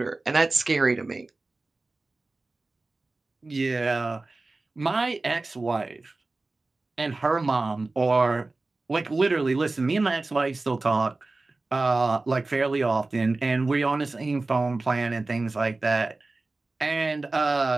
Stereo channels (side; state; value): left; quieter; 3.3 dB